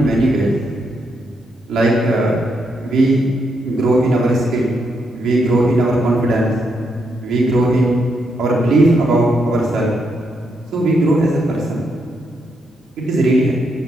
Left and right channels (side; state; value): both; normal; correlation 0.79